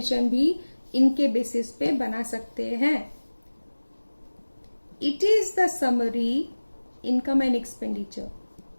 भी इनके बेसिस पे बना सकते हैं। It is the summary income and expenditure,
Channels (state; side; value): inverted; both; correlation -1.00